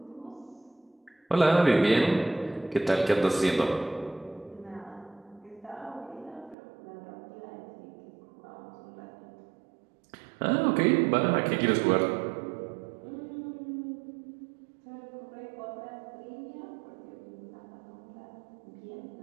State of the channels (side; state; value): left; drops out; at 6.6 s